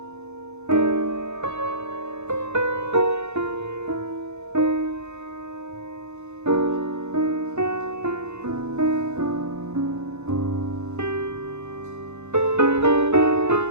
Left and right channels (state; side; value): late; left; 0.82 ms